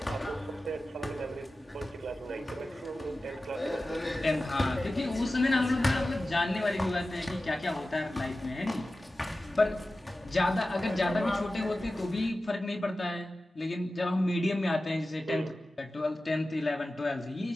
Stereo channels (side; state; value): both; normal; correlation 0.95